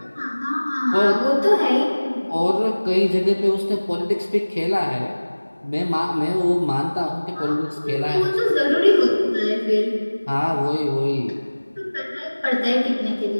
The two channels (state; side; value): inverted; both; correlation -1.00